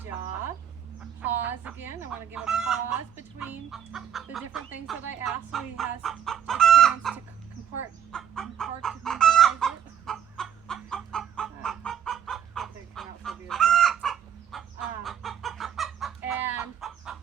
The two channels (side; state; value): left; quieter; 9.0 dB